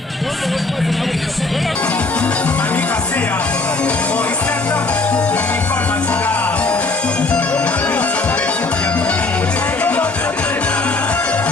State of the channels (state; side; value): quieter; right; 3.4 dB